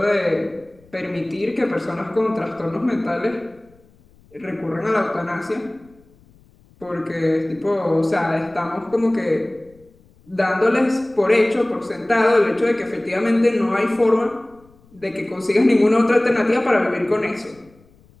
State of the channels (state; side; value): noise; left; rumble, 29 dB below the sound